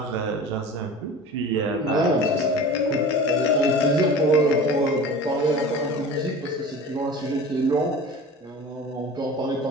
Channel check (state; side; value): normal; both; correlation 0.37